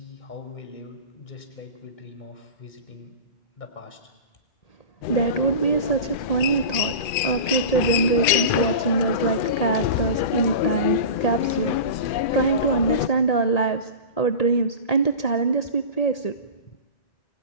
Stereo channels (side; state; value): right; late; 2.4 ms